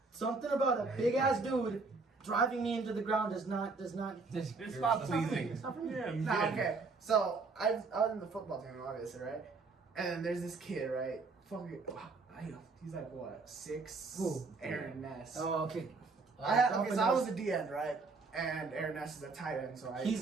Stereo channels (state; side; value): quieter; left; 4.1 dB